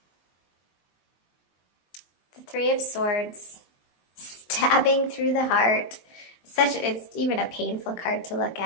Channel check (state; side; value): late; right; 23 ms